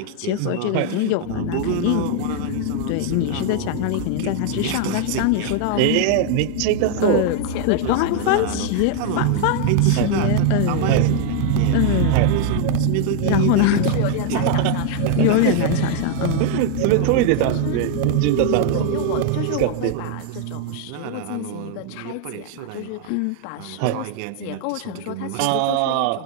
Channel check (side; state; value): both; different; correlation 0.00